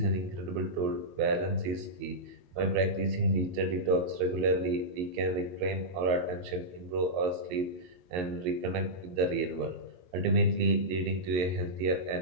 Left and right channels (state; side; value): late; left; 22 ms